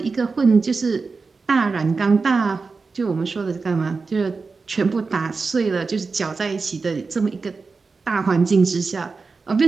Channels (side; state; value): left; quieter; 4.4 dB